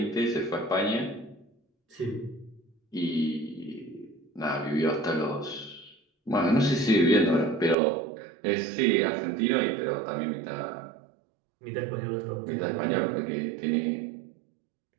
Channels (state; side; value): drops out; left; at 7.8 s